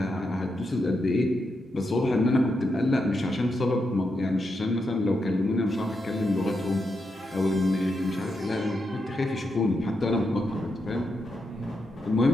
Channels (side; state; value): both; normal; correlation 0.84